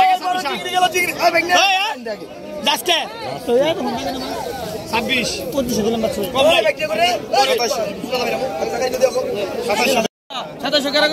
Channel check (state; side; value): identical; both; correlation 1.00